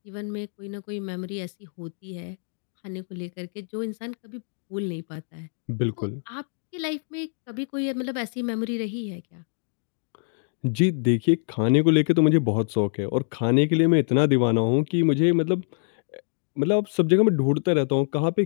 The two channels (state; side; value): silent; right; 61 dB below the other